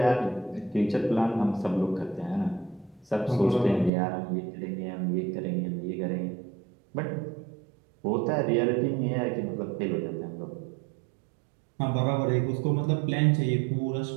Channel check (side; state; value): left; drops out; at 3.9 s